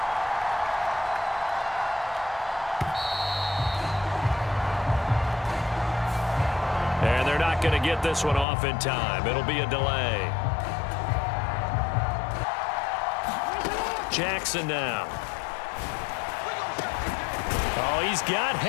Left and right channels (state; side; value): drops out; right; at 8.5 s